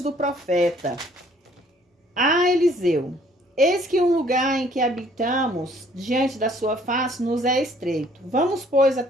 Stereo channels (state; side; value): normal; both; correlation 0.60